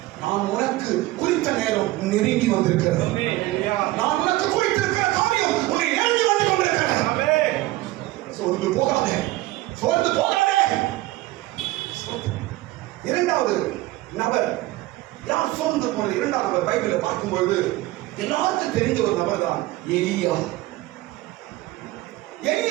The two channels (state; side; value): quieter; left; 18.0 dB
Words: நான் உனக்கு குறித்த நேரம் நெருங்கி வந்திருக்கிறது. நான் உனக்கு குறித்திருக்கிற காரியம் உன்னை நெருங்கி வந்து கொண்டிருக்கிறது. சோர்ந்து போகாதே, சோர்ந்து போகாதே. இரண்டாவது நபர் யார் சோர்ந்து போனது? இரண்டாவது நபர் பைபிளை பார்க்கும்போது எல்லாருக்கும் தெரிஞ்ச ஒரு நபர் தான் எலியா.